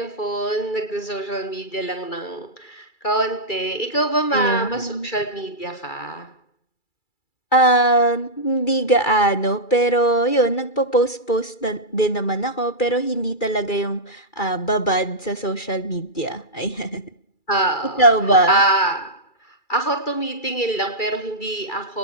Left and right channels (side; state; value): right; late; 2.3 ms